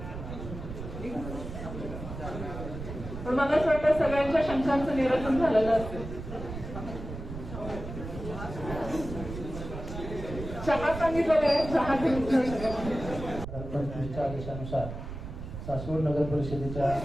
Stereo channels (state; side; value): noise; right; rumble, 9 dB below the sound